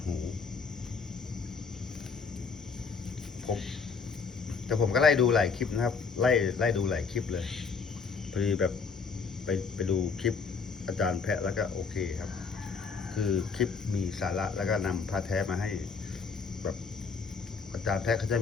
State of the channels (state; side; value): quieter; right; 5.2 dB